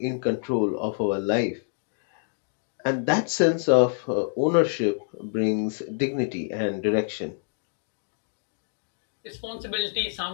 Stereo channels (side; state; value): right; silent; digital silence